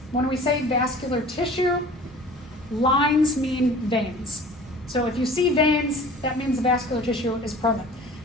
when we say vascular tissue, lines mean veins. So if you see veins, that means the vascular tissue is present.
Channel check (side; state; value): both; normal; correlation 0.44